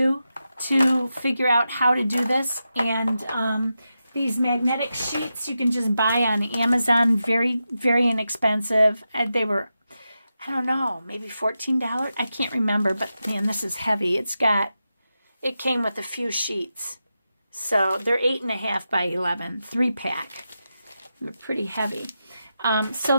to figure out how to do this. And these magnetic sheets you can just buy on Amazon, very, very inexpensive. They were, I don't know, maybe $14. I can't remember, but man, this is heavy. It came with a few sheets. So they're 8.5 by 11, 3-pack. They're pretty heavy. So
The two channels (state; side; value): inverted; both; correlation -0.89